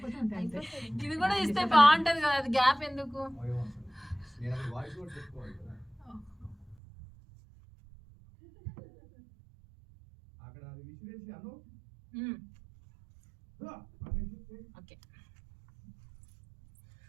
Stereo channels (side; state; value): left; drops out; at 6.8 s